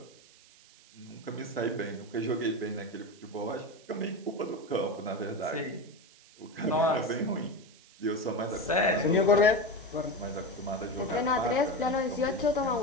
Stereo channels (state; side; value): noise; right; hiss, 25 dB below the sound